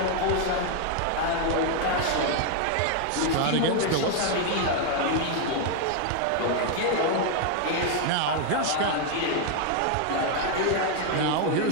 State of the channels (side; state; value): both; different; correlation 0.00